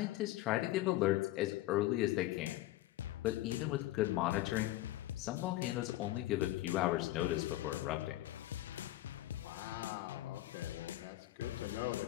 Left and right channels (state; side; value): quieter; right; 16.0 dB